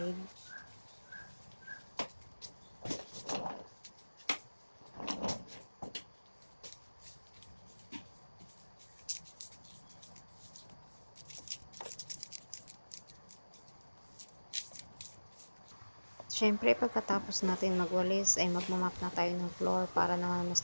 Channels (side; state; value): both; inverted; correlation -1.00